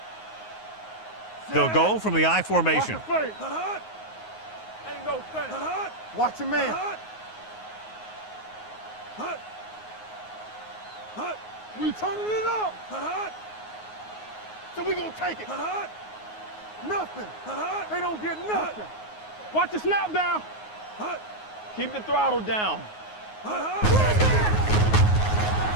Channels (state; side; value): late; right; 9.5 ms